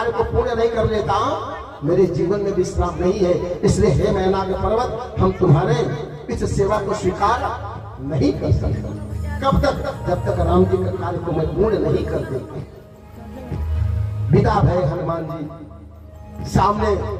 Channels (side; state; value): both; identical; correlation 1.00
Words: को पूर्ण नहीं कर लेता, मेरे जीवन में विश्राम नहीं है। इसलिए हे मैना के पर्वत, हम तुम्हारे इस सेवा को स्वीकार नहीं कर सकते। कब तक? जब तक राम जी के कार्य को मैं पूर्ण नहीं कर देता। विदा भय हनुमान जी। सामने